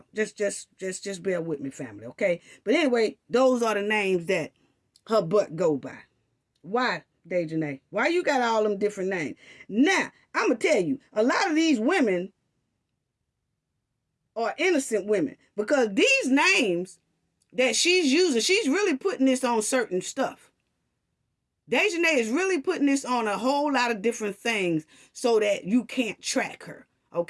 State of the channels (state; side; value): identical; both; correlation 1.00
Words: just bear with me, family, okay? But anyway, those are the names that her butt go by. Why, Daejhanae? Why you got all them different names? Now, I'm gonna tell you, a lot of these women are innocent women, because these names that she's using, she's really putting this on certain stuff. Daejhanae is really putting this on a whole lot of different things so that you can't track her,